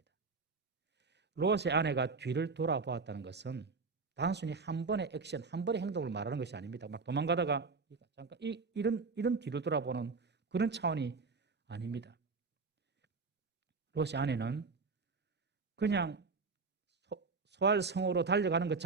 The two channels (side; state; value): left; quieter; 4.5 dB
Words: 롯의 아내가 뒤를 돌아보았다는 것은 단순히 한 번의 액션, 한 번의 행동을 말하는 것이 아닙니다. 막 도망가다가 잠깐 이런 뒤를 돌아보는 그런 차원이 아닙니다. 롯의 아내는 그냥 소알 성으로 달려가는 것